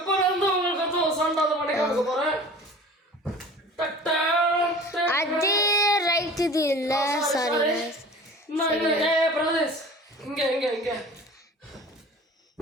வந்து உங்களுக்கு சண்டாத பண்ணி காமிக்க போறேன். அது ரைட் இது இல்ல சாரி பிரதேஷ் இங்க இங்க இங்க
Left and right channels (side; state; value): both; normal; correlation 0.42